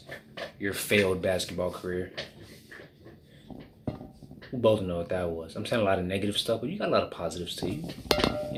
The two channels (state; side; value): identical; both; correlation 1.00